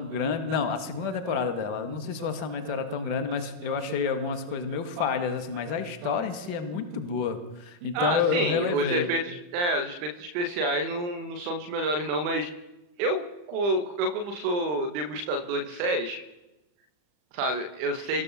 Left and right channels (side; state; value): left; late; 40 ms